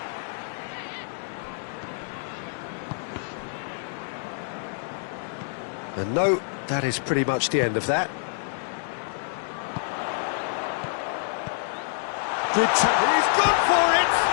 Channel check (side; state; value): right; silent; digital silence